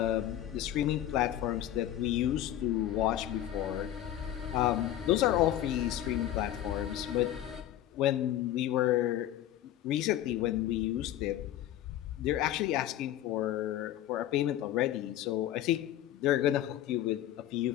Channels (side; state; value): right; quieter; 12.4 dB